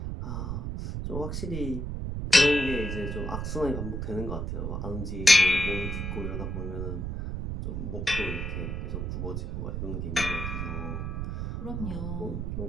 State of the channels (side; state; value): right; noise; rumble, 3 dB below the sound